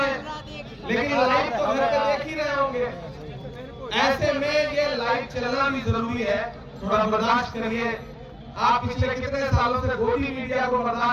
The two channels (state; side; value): identical; both; correlation 1.00